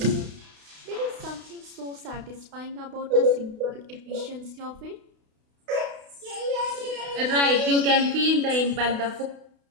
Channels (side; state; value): left; late; 32 ms